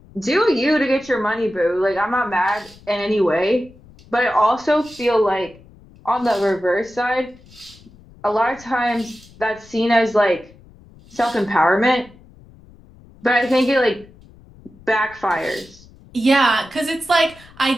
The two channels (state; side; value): noise; left; rumble, 24 dB below the sound